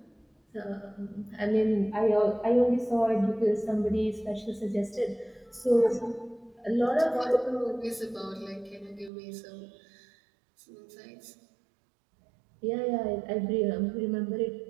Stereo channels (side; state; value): left; drops out; at 9.1 s